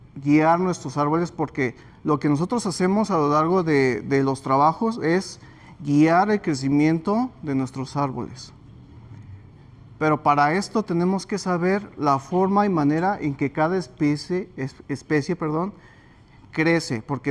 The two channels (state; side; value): identical; both; correlation 1.00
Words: guiar nuestros árboles, porque lo que nosotros hacemos a lo largo de los trabajos es guiar el crecimiento de nuestros árboles. Pero para esto tenemos que saber la forma y manera en que cada especie crece,